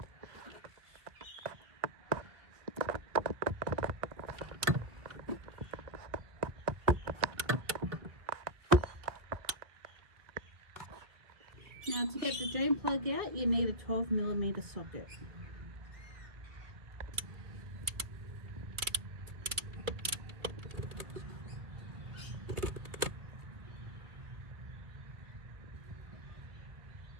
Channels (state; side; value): late; left; 2.2 ms